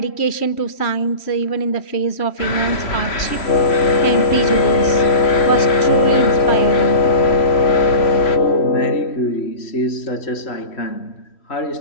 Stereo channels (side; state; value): right; late; 3.1 ms